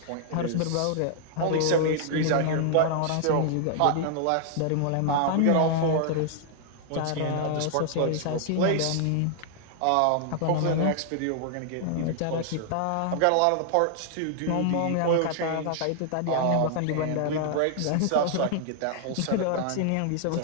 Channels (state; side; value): different; both; correlation -0.01